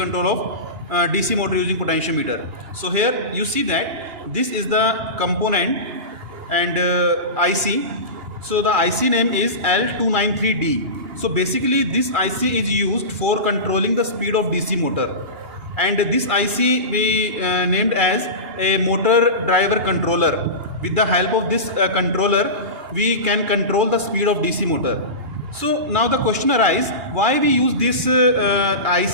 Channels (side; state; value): left; late; 2.9 ms